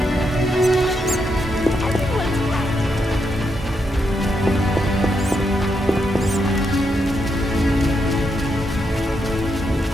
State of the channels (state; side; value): normal; both; correlation 0.81